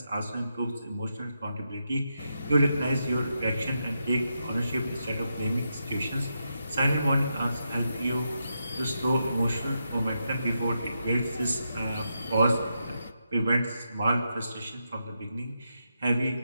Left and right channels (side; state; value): both; inverted; correlation -0.84